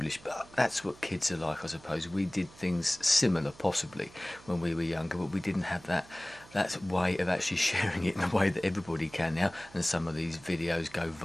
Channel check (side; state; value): right; noise; hum, 22 dB below the sound